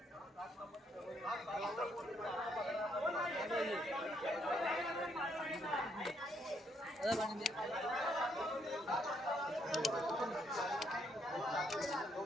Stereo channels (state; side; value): normal; both; correlation 0.72